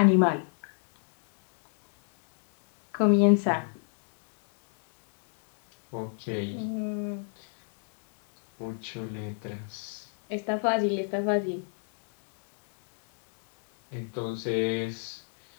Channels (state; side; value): silent; right; 57 dB below the other